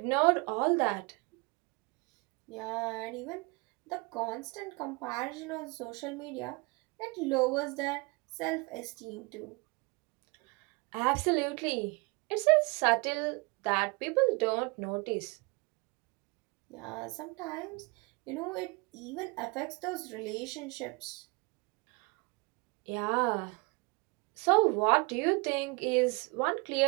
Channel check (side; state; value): left; quieter; 29.2 dB